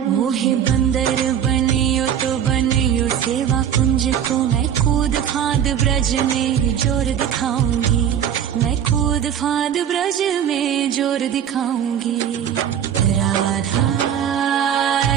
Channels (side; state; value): left; quieter; 9.1 dB